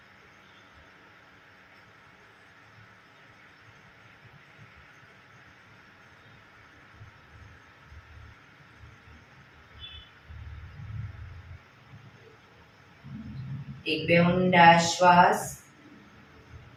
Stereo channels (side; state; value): both; identical; correlation 1.00